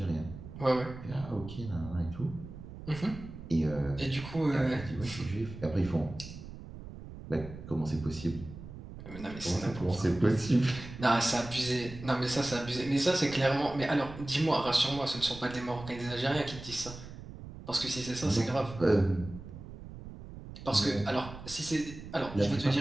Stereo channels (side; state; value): right; noise; rumble, 13 dB below the sound